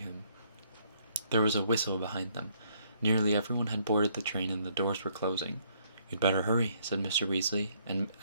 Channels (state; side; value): inverted; both; correlation -0.68